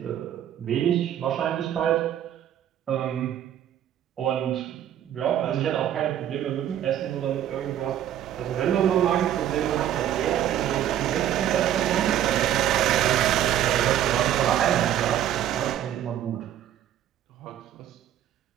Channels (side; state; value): left; quieter; 11.1 dB